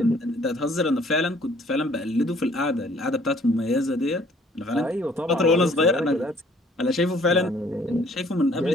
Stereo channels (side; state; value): both; normal; correlation 0.59